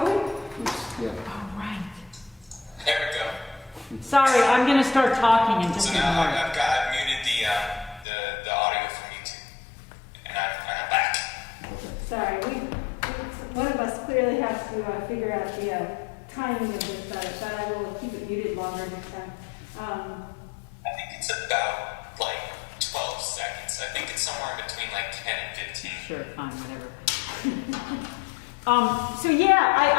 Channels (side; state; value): right; drops out; at 8.1 s